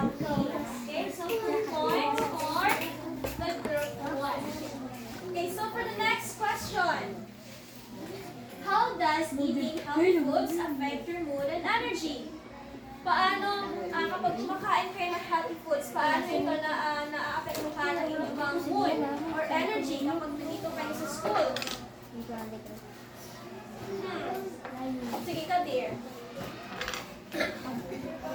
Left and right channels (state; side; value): identical; both; correlation 1.00